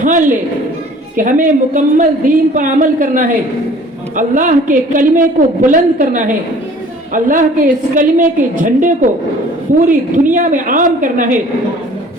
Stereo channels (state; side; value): normal; both; correlation 0.50